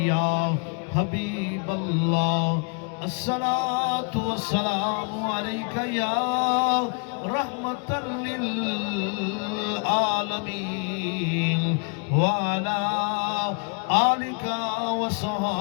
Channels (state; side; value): quieter; right; 37.1 dB